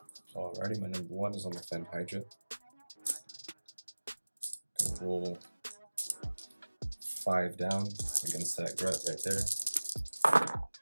Alrighty, my number 1 is on the Fen Hydra. Gonna roll 5 down against that Gret right there.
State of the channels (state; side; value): inverted; both; correlation -1.00